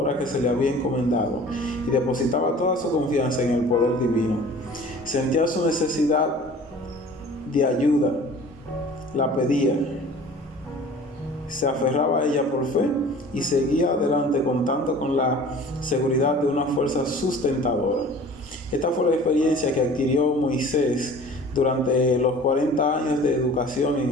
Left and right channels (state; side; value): normal; both; correlation 0.45